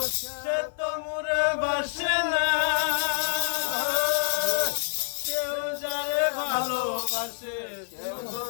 সে তো মোরে বাসে না, কেউ যারে ভালোবাসে কেউ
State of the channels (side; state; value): right; silent; 60 dB below the other